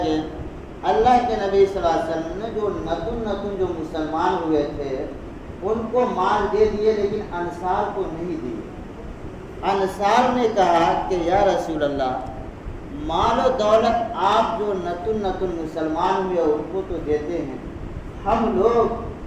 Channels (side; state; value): both; identical; correlation 1.00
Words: اللہ کے نبی صلی اللہ علیہ وسلم نے جو نتن جو مسلمان ہوئے تھے ان کو مال دے دیے، لیکن انصار کو نہیں دیے۔ انصار نے کہا کہ یا رسول اللہ، مال و دولت آپ جو نتن مسلمان ہوئے ان کو تو دیتے ہیں، ہم لوگ